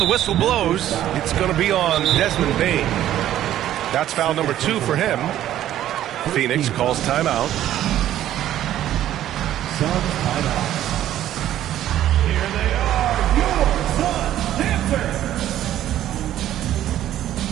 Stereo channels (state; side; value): quieter; left; 12.4 dB